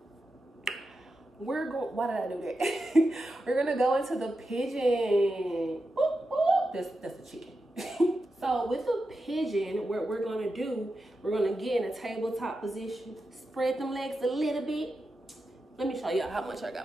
Why did I do that? We're gonna go into the pigeon. Ooh, ooh. That's a chicken. So with the pigeon, what we're gonna do, we're gonna get in a tabletop position, spread them legs a little bit. Let me show y'all how much I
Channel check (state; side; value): normal; both; correlation 0.89